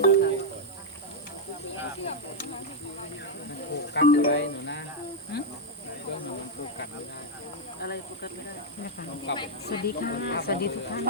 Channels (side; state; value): both; normal; correlation -0.03